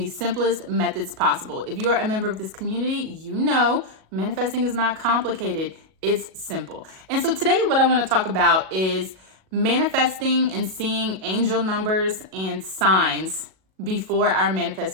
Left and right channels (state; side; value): late; left; 37 ms